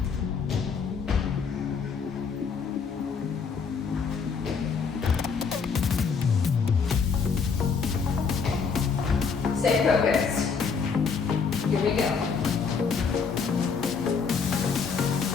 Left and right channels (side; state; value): right; quieter; 5.6 dB